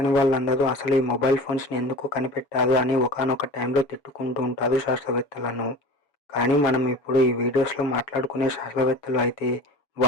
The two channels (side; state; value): right; late; 7.1 ms